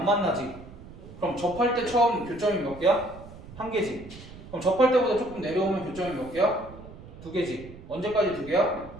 만나지. 그럼 접할 때 처음 교점이 몇 개야? 1개지. 그럼 접할 때보다 조금 내려오면 교점이 몇 개야? 2개지. 언제까지 2개야?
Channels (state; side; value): noise; right; rumble, 16 dB below the sound